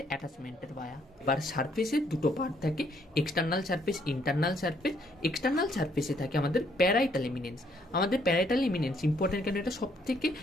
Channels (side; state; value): both; normal; correlation 0.68